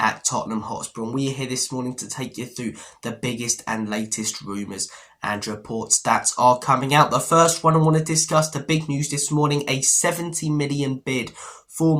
Tottenham Hotspur, and we are here this morning to take you through the biggest and latest rumours and reports that are coming out. The first one I want to discuss, the big news this morning, a 70 million bid for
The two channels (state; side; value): identical; both; correlation 1.00